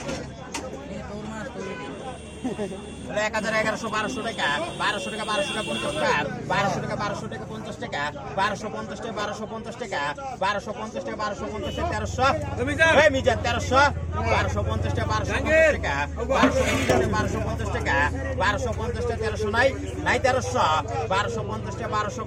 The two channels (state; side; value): identical; both; correlation 1.00